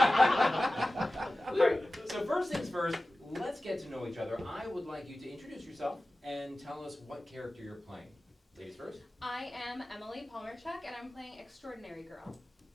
All right, so first things first, let's get to know each other. I would like you to introduce yourself and tell us what character you're playing. Ladies first. I am Emily Palmerchuk, and I'm playing Extraordinary Girl.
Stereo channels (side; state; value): both; normal; correlation 0.96